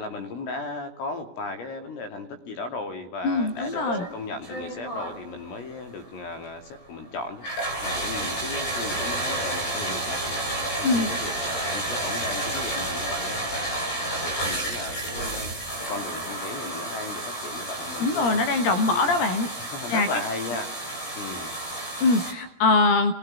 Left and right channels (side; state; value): right; late; 17 ms